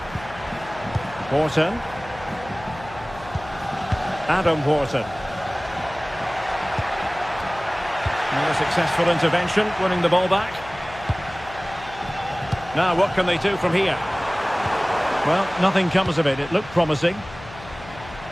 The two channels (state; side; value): noise; left; hum, 17 dB below the sound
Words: Horton. Adam Horton. Another successful intervention, winning the ball back. Now, what can they do from here? Well, nothing comes of it. It looked promising.